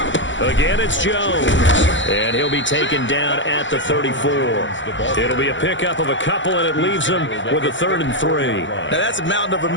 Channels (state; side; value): late; right; 0.54 ms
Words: Again, it's Jones, and he'll be taken down at the 34. It'll be a pickup of a couple, and it leaves him with a 3rd and 3. Now, that's a mountain of a